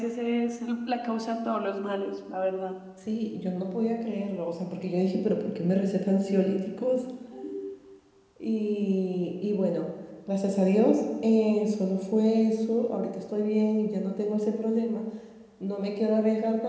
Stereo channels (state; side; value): identical; both; correlation 1.00